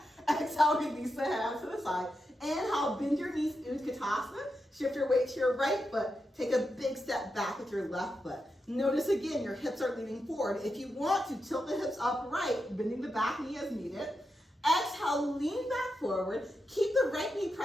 Exhale, release the hands to the side. Inhale, bend your knees, Utkatasana. Shift your weight to your right foot. Take a big step back with your left foot. Notice again, your hips are leaning forward. If you want to, tilt the hips upright, bending the back knee as needed. Exhale, lean back forward. Keep the right knee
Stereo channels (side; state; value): both; normal; correlation 0.87